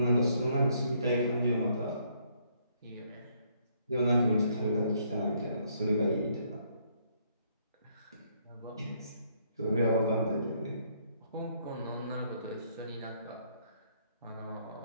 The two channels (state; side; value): inverted; both; correlation -0.69